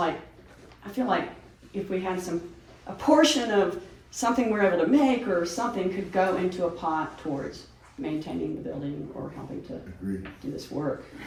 I feel like if we had a portion of something we're able to make or something could go into a pot towards maintaining the building or helping to Agreed. do this work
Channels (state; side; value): identical; both; correlation 1.00